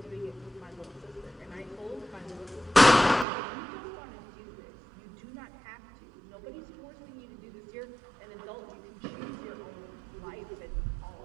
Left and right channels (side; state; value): left; drops out; at 3.2 s